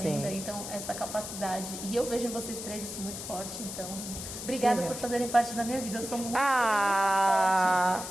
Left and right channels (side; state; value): left; noise; hiss, 8 dB below the sound